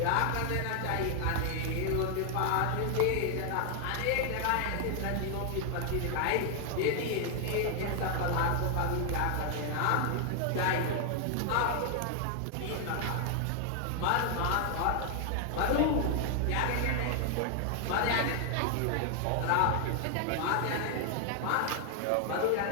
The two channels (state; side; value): different; both; correlation 0.00